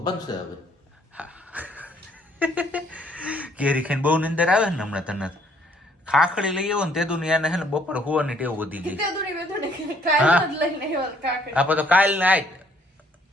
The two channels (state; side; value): normal; both; correlation 0.64